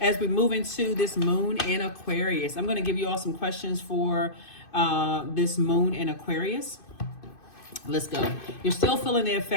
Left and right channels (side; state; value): right; late; 2.5 ms